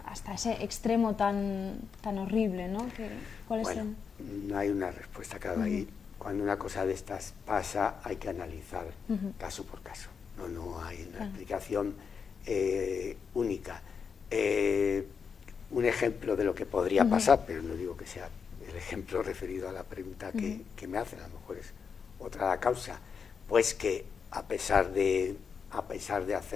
ese extremo tan horrible, ¿no? No hay una respuesta cada ahí. Cuando una cosa de estas pasa, hay que analizar caso por caso. No hay una explicación única. Un ejemplo de lo que podría pasar, pero no digo que sea el ejemplo referido a la pregunta que me hacen, a lo mejor es otra la causa, pues que a pesar de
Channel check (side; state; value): right; quieter; 6.2 dB